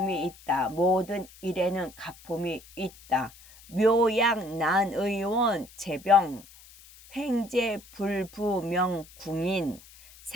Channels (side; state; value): left; noise; hiss, 22 dB below the sound